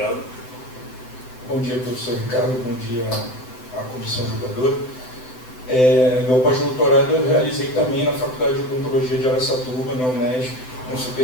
Bom dia, professor Ricardo. Bom dia à comissão julgadora. Meu pós-doutorado eu realizei também na Faculdade de Odontologia de Araçatuba, na Unesp, com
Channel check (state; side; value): late; right; 7.9 ms